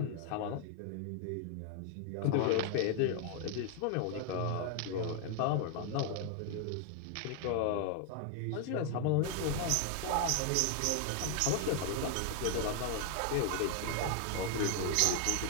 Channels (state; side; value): different; both; correlation 0.00